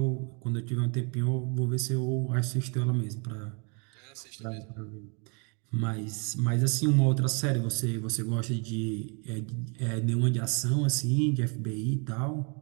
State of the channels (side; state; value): left; quieter; 35.5 dB